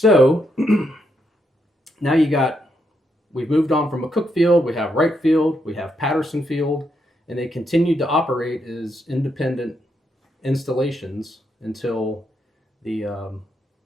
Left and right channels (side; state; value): both; normal; correlation 0.79